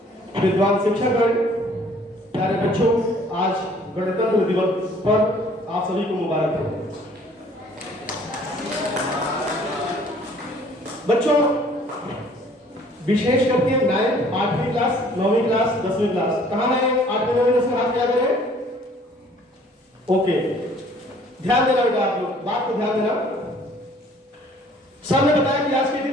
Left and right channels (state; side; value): normal; both; correlation 0.56